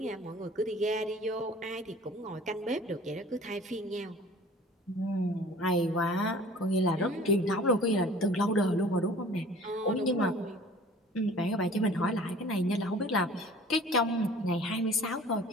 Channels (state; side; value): normal; both; correlation 0.47